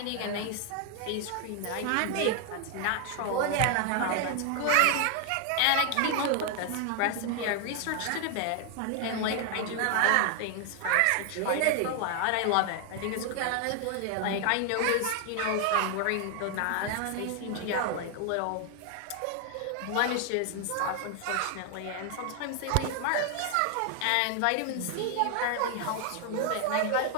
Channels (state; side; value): different; both; correlation 0.00